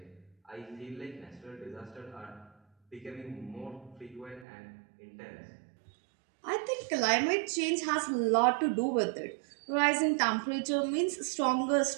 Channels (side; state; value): left; drops out; at 4.5 s